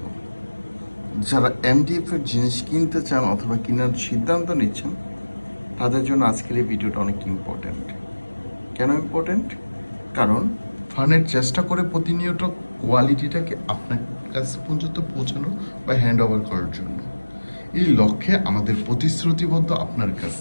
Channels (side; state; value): both; inverted; correlation -1.00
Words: যারা এমডিএফ এর জিনিস কিনতে চান অথবা কেনার সিদ্ধান্ত নিচ্ছেন, তাদের জন্য আজকের এই ভিডিওটা অনেক ইম্পর্ট্যান্ট। কেন ইম্পর্ট্যান্ট? কারণ ফানের চেষ্টা করে প্রতিনিয়ত কোয়ালিটিটাকে আপনার কাছে পর্যন্ত পৌঁছানো বা হ্যান্ড ওভার করার জন্য। এই লক্ষ্যে আমাদের প্রতিশ্রুতিবদ্ধ আপনার কাছ